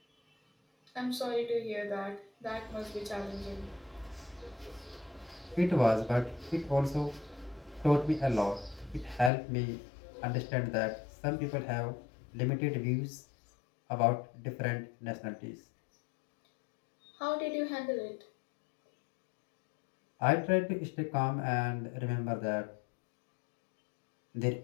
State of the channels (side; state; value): right; drops out; at 9.3 s